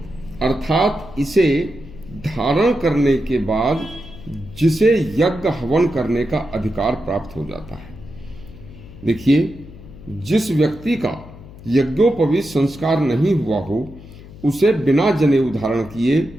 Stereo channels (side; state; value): left; noise; hum, 18 dB below the sound